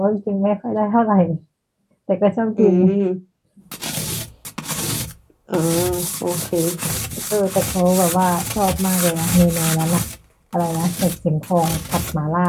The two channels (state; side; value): identical; both; correlation 1.00